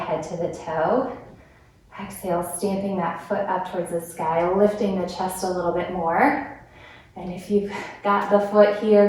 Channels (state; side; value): identical; both; correlation 1.00